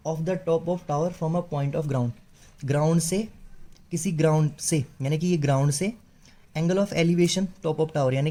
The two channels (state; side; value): identical; both; correlation 1.00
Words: of the top of tower from a point of ground, ground से, किसी ग्राउंड से, यानी कि ये ग्राउंड से angle of elevation top of tower, यानी